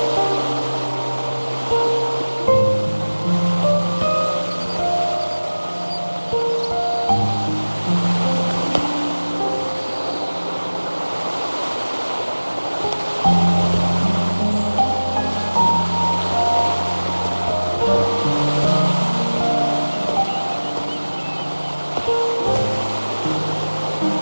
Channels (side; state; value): both; inverted; correlation -1.00